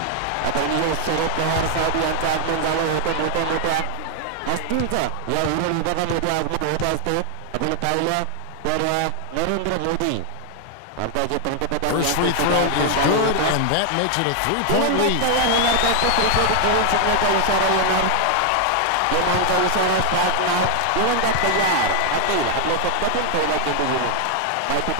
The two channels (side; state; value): both; different; correlation 0.00